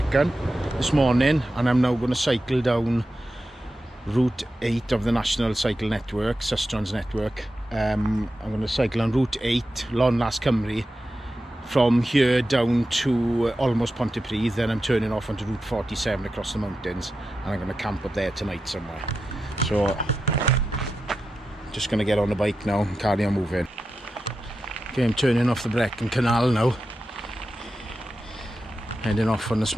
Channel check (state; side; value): normal; both; correlation 0.91